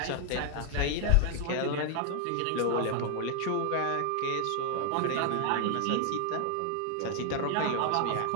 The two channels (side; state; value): both; different; correlation 0.00